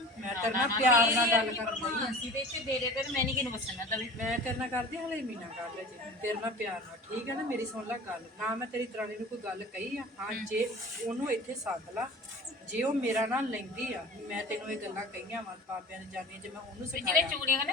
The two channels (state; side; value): normal; both; correlation 0.39